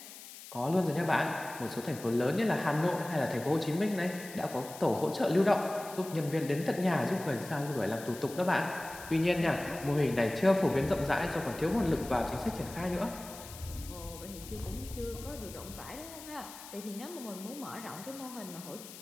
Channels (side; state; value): left; noise; hiss, 15 dB below the sound